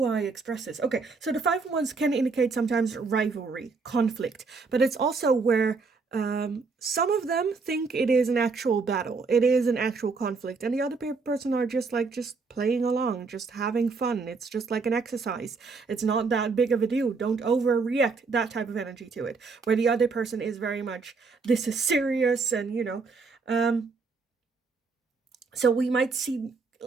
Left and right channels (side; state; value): left; quieter; 4.5 dB